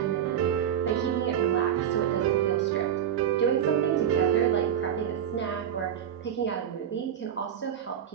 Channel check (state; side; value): quieter; left; 9.5 dB